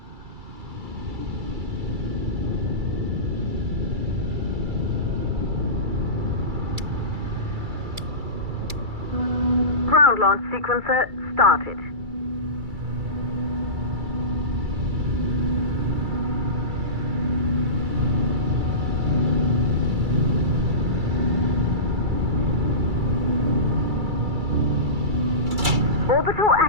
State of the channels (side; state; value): left; late; 2.3 ms